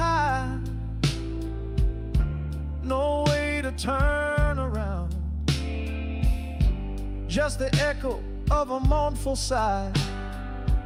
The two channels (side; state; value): both; identical; correlation 1.00